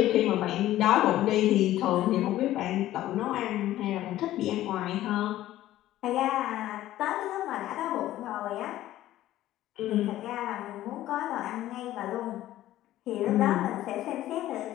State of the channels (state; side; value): quieter; right; 14.2 dB